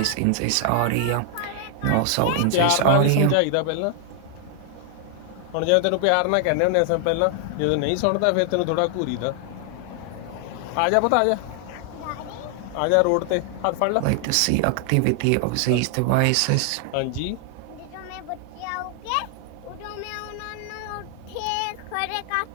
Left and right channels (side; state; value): both; different; correlation 0.00